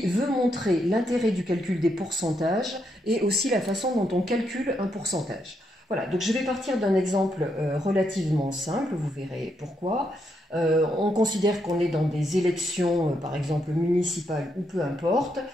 veut montrer l'intérêt du calcul des pourcentages et aussi la façon dont on calcule un pourcentage. Voilà, donc je vais partir d'un exemple relativement simple, vous verrez pourquoi. On considère qu'on est dans des élections, par exemple municipales ou peu importe,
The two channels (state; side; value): normal; both; correlation 0.79